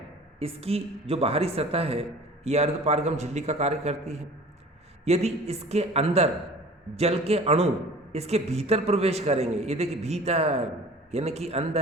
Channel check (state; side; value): normal; both; correlation 0.45